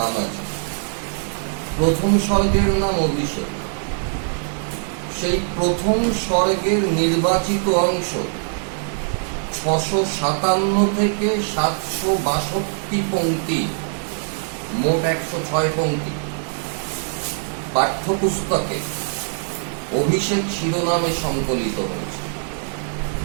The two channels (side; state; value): left; silent; digital silence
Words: আছে। প্রথম স্বর্গের নাম অভিষেক। সেই প্রথম স্বর্গের নির্বাচিত অংশ 657 থেকে 762 পংক্তি, মোট 106 পংক্তি পাঠ্যপুস্তকে অভিষেক শিরোনামে সংকলিত হয়েছে।